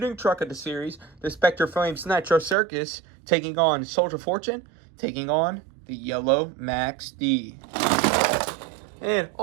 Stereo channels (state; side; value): drops out; left; at 2.6 s